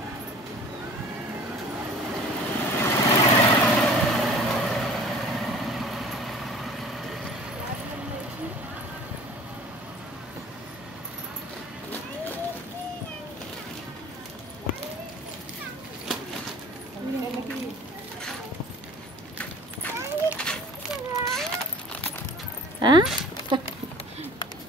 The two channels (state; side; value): normal; both; correlation 0.46